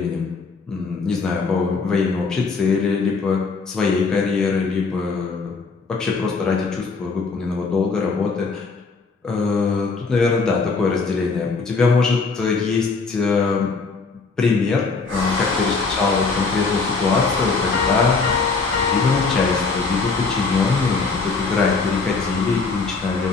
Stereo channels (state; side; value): quieter; right; 4.4 dB